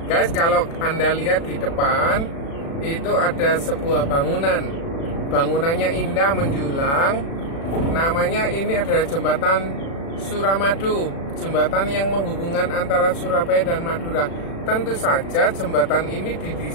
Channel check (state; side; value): late; right; 36 ms